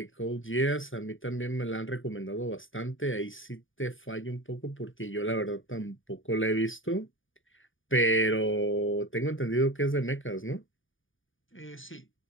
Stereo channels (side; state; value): right; late; 0.57 ms